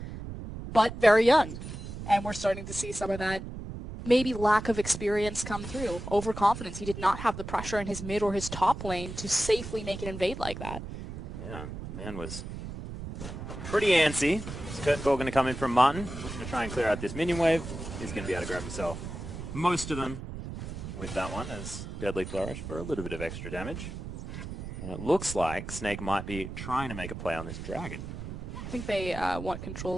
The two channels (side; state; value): right; noise; rumble, 9 dB below the sound